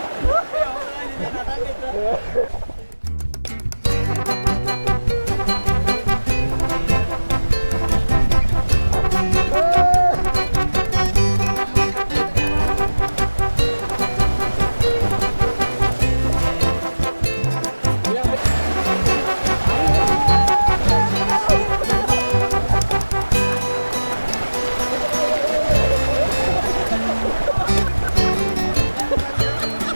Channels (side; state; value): both; inverted; correlation -1.00